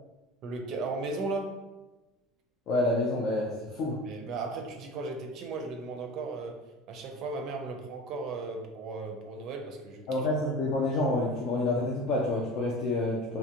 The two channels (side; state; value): both; normal; correlation 0.36